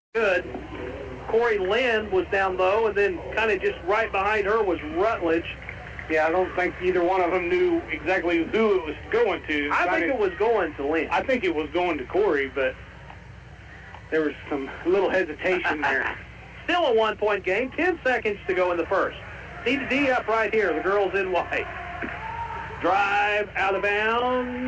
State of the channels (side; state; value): both; identical; correlation 1.00